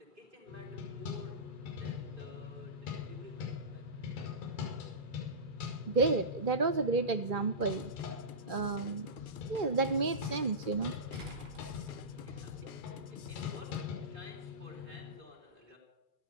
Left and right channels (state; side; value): late; left; 2.4 ms